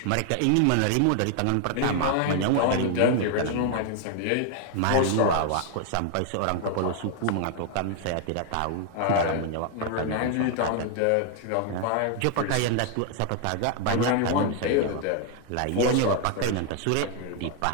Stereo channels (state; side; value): different; both; correlation 0.00